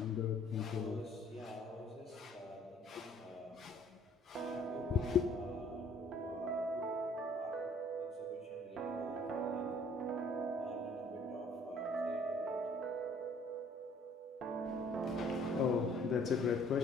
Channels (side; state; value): both; normal; correlation 0.58